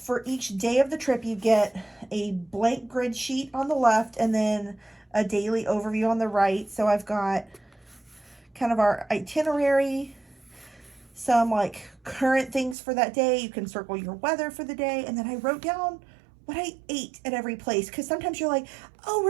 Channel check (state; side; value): drops out; left; at 12.8 s